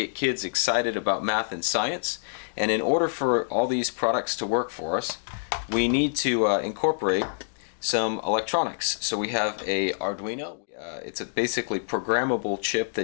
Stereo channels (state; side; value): silent; right; digital silence